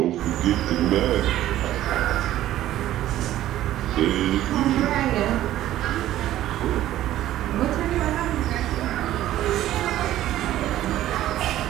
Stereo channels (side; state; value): left; quieter; 13.6 dB